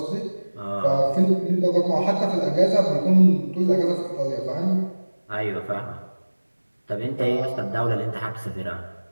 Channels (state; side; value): inverted; both; correlation -1.00